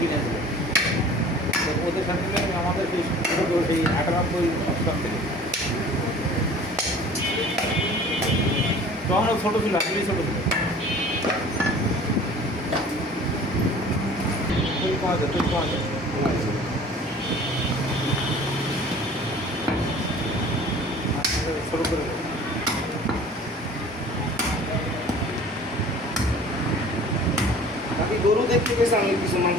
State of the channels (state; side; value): normal; both; correlation 0.46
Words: দিল। ওদের সাথে আমাদের সেই ছোটো সেই 98 অষ্টম থেকে, তখন ও ছোটো ছিল, আসলেই ছোটো ছিল। পাওয়া যায়, পাওয়া যায়। ছোটো করে বাকি গরু দেখতে পেয়েছে, আমি কিছু